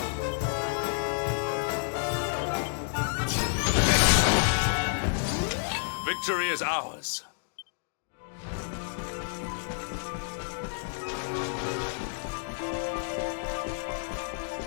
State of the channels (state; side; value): silent; right; digital silence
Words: Victory is ours.